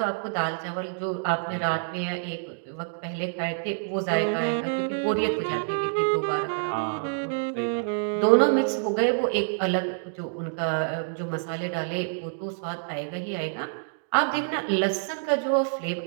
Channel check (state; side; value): silent; left; digital silence